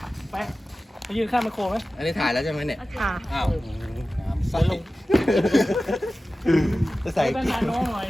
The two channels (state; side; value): normal; both; correlation 0.95